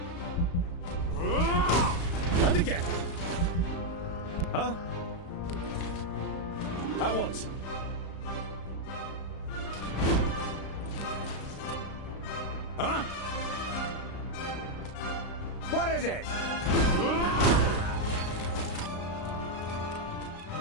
And again. Huh? At once. Huh? What is it?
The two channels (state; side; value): late; right; 35 ms